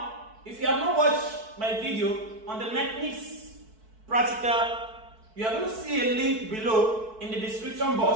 if you have not watched my video on the mechanics practical, you are going to see a link below in the description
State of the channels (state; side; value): late; left; 4.6 ms